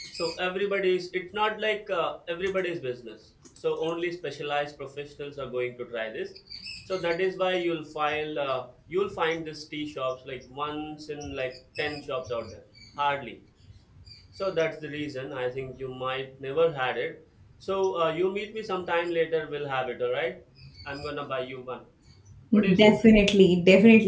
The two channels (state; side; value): identical; both; correlation 1.00